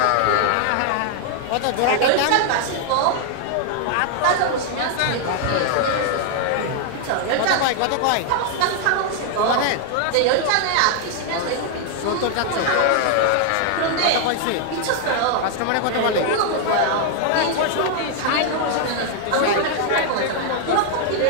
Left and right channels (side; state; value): both; different; correlation 0.00